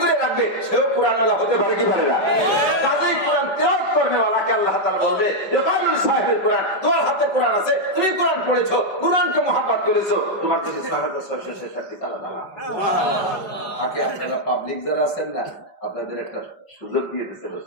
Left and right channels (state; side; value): late; right; 5.3 ms